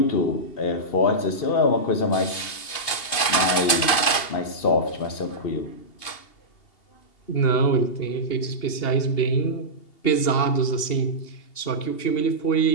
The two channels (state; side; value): late; right; 2.8 ms